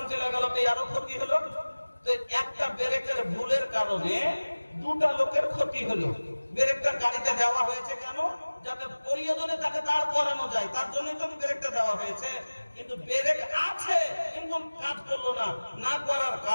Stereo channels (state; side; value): inverted; both; correlation -1.00